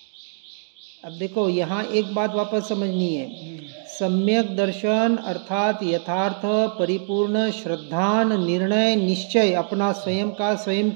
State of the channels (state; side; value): silent; left; digital silence